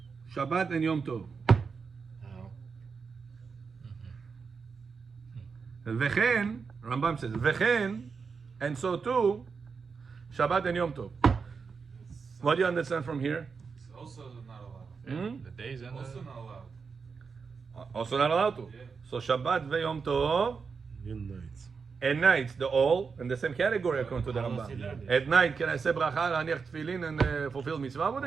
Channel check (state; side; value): quieter; left; 5.4 dB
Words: Shabbat and Yom Tov. How? Vechen, Rambam says, Vechen, and so too, Shabbat and Yom Tov. What do you understand from here? It's also not allowed. the days and Also the... not allowed. Also not allowed to. Yeah. So Shabbat ve Yom Tov, In nights. and nights, the all in the same category according to the How does he Rambam. learn this? At night, can I say bracha, laniach tefillin, and fulfill mitzvah with